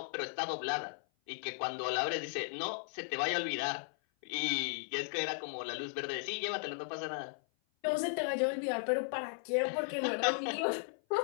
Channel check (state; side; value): silent; right; 54 dB below the other